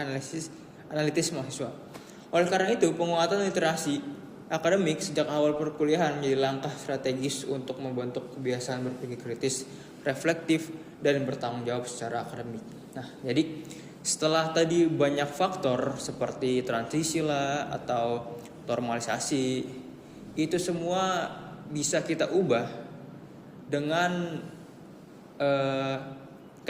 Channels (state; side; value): identical; both; correlation 1.00